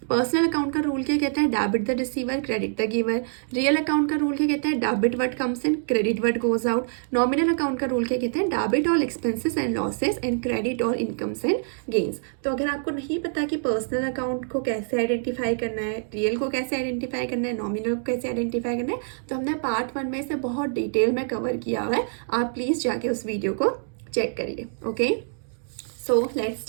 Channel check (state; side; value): silent; left; digital silence